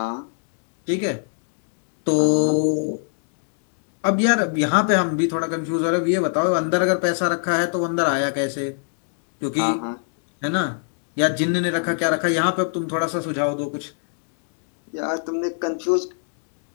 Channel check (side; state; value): right; silent; digital silence